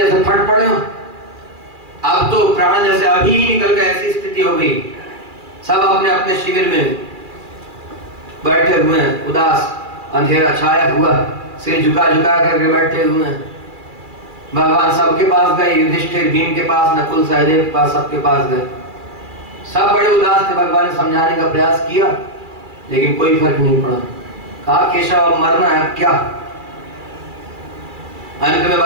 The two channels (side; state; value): left; late; 2.4 ms